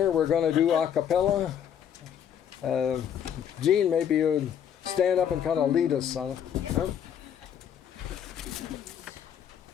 we're going to do a cappella. Gene, maybe you'd stand up and kind of lead us on it. Huh?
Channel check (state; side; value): quieter; right; 8.9 dB